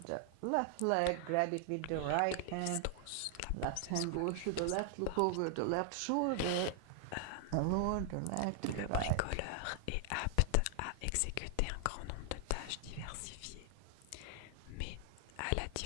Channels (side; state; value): both; different; correlation 0.00